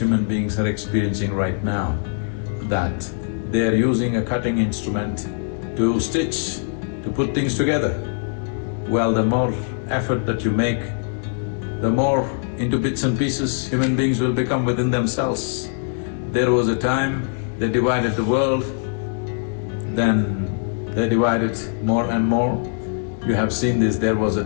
beings are experiencing right now, that they are using a cutting instrument to stitch, to put things together. Well, the more effort that you make, the more into bits and pieces human beings will become within themselves. There was a time they divided the world, then They divide it more and more. You have seen this, there was a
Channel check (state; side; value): silent; right; digital silence